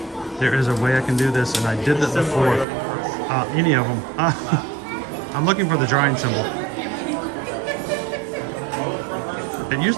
There is a way I can do this, and I did this before. Any of them. I'm looking for the drawing symbol. It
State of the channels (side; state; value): left; drops out; at 2.7 s